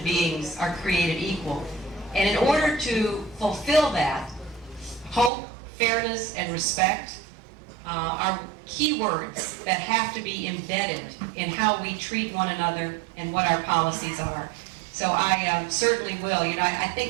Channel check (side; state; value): left; drops out; at 5.3 s